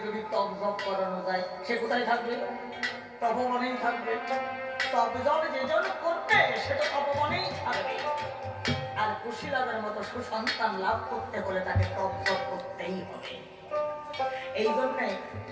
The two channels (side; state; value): both; identical; correlation 1.00